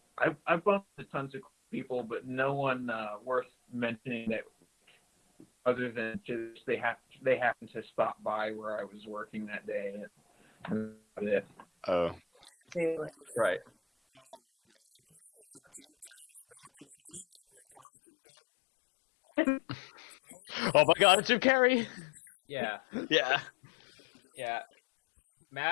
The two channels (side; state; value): right; drops out; at 17.8 s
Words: bumped into tons of people, but no one worth mentioning that other than just they happen to stop by where I was working that day. And that's it. Oh. Right. Oh my God, it's Jim Carrey. Yeah. Yeah. Yeah.